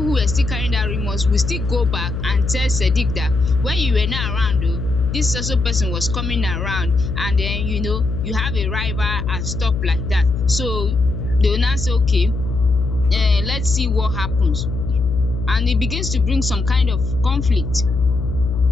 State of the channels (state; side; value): noise; left; hum, 4 dB below the sound